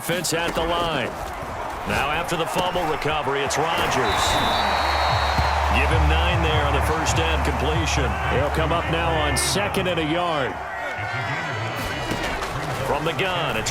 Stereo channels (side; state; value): both; identical; correlation 1.00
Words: at the line. Now after the fumble recovery, it's Rodgers. Give him 9 there on the first down completion. He'll come up now on 2nd and a yard. From the gun,